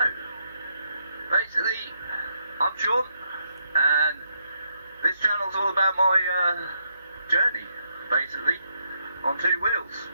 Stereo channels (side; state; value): both; inverted; correlation -0.78